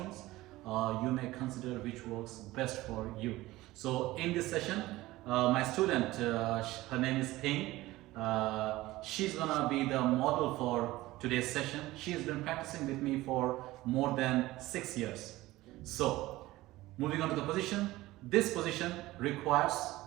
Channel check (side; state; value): left; quieter; 17.9 dB